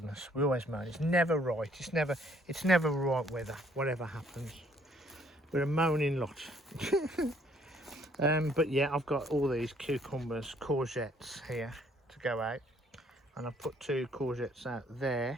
We always moan. It's never right. It's never right weather. Whatever happens, we're a moaning lot. But yeah, I've got all these cucumbers, courgettes here to go out, and I've put 2 courgettes out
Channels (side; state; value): both; normal; correlation 0.64